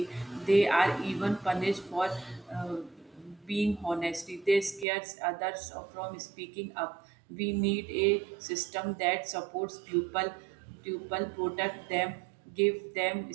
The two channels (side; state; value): left; drops out; at 4.9 s